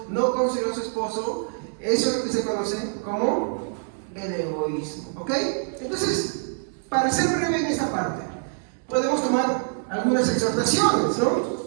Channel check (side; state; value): left; silent; digital silence